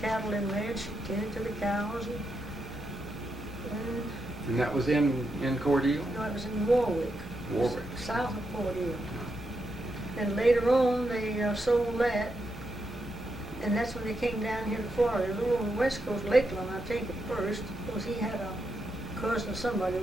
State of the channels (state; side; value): normal; both; correlation 0.83